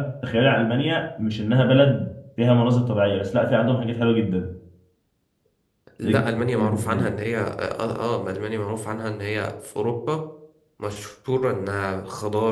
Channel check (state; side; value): identical; both; correlation 1.00